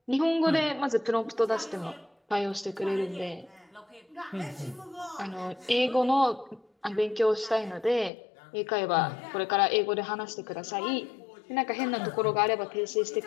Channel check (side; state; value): right; drops out; at 8.1 s